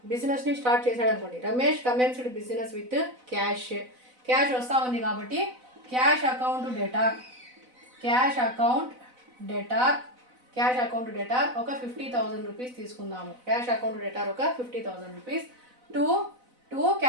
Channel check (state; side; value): late; left; 4.0 ms